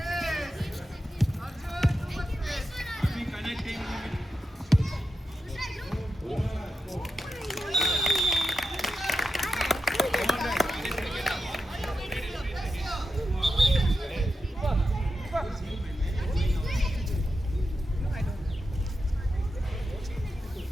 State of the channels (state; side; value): normal; both; correlation 0.88